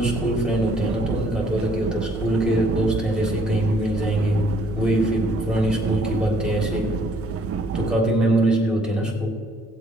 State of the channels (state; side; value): normal; both; correlation 0.64